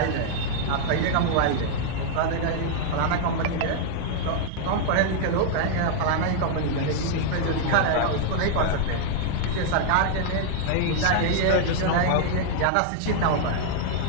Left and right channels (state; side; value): different; both; correlation -0.01